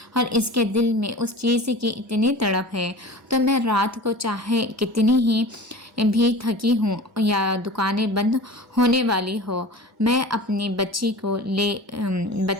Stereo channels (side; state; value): both; normal; correlation 0.37